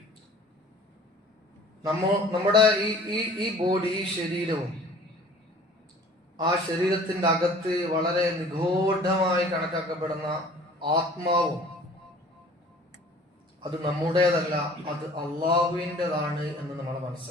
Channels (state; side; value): normal; both; correlation 0.49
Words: നമ്മുടെ ഈ ബോഡി, ഈ ശരീരവും ആ ശരീരത്തിന്റെ അകത്ത് വളരെ നിഗൂഢമായി കണക്കാക്കപ്പെടുന്ന ആത്മാവും അത് നമ്മുടേതല്ല, അത് അള്ളാഹുവിൻ്റെതാണ് എന്ന് നമ്മൾ